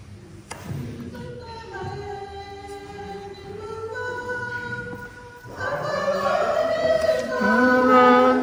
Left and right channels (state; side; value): identical; both; correlation 1.00